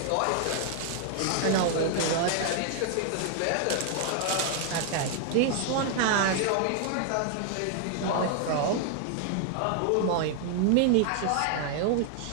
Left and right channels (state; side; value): different; both; correlation 0.00